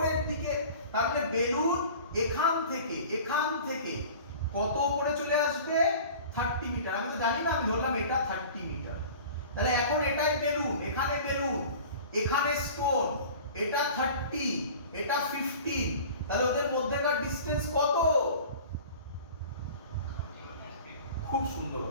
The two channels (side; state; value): both; inverted; correlation -0.42